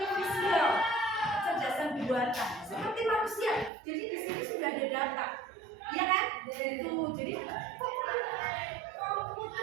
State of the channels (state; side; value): drops out; left; at 3.7 s